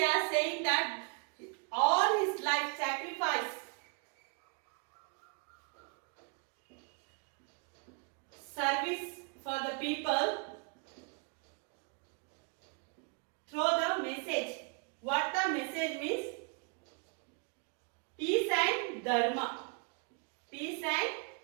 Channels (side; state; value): left; quieter; 37.7 dB